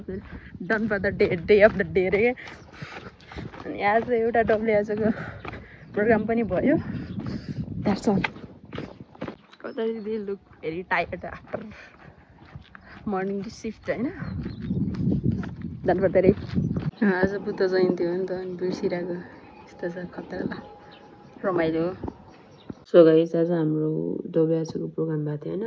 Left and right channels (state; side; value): identical; both; correlation 1.00